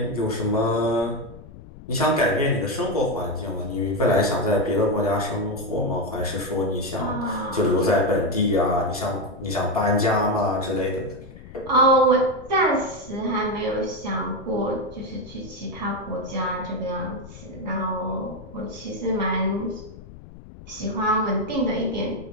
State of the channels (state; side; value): noise; left; rumble, 17 dB below the sound